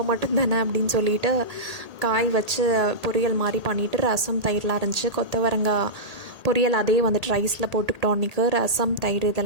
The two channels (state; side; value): late; left; 1.8 ms